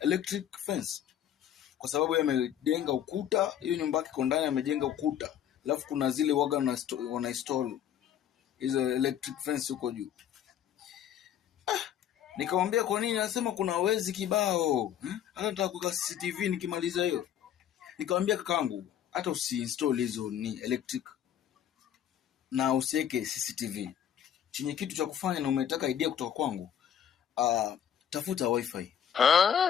fence? Kwa sababu yeye amejenga ukuta, hiyo nyumba yake ndani amejenga ukuta. Alafu kuna zile waga wana install hizo electric fence huko juu. Nikamwambia kwa nini? Anasema kuna wezi kibao. Hata nataka kuweka CCTV nikimaliza hiyo. Nikamwambia kakangu, hata usiinstall hizo ni electric na usiweke CCTV. Chenye kitu cha kufanya na umetaka idea kutoka kwangu, tafuta wifi.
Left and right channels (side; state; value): right; quieter; 9.8 dB